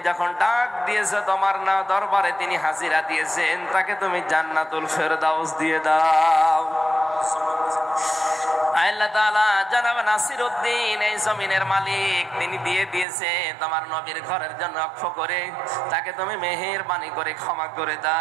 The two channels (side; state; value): left; drops out; at 13.1 s